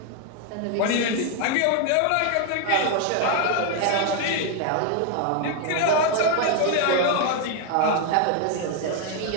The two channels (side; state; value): both; different; correlation 0.01